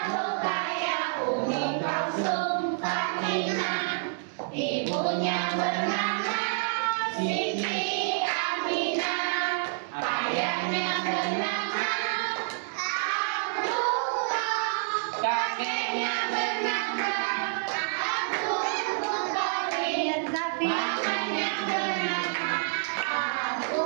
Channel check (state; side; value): silent; left; digital silence